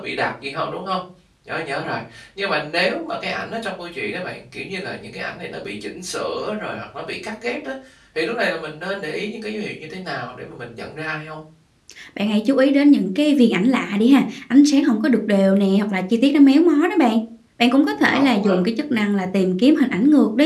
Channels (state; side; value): identical; both; correlation 1.00